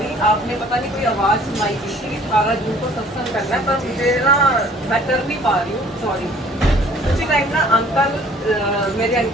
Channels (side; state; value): both; normal; correlation 0.54